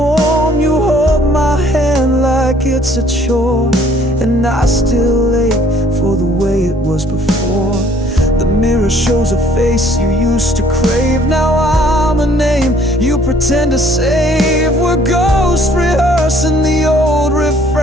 You hold my hand like it's a chore, and I still ache for the way it was before. The mirror shows a face you used to crave. Now I'm a name you pretend to save. We're ghosts rehearsing the old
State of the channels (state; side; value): normal; both; correlation 0.59